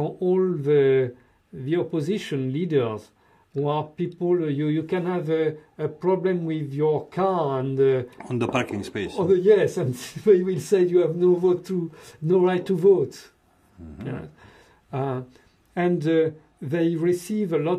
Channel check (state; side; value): identical; both; correlation 1.00